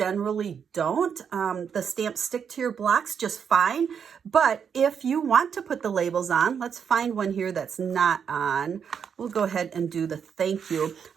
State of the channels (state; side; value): quieter; left; 7.2 dB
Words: don't. The stamps stick to your blocks just fine. But if you want to put the labels on, let's find one here that's not on. We'll go ahead and do the thank you.